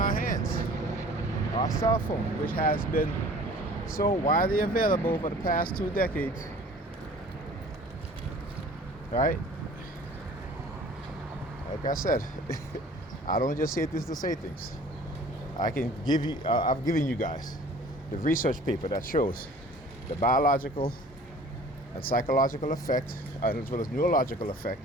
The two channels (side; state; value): both; normal; correlation 0.48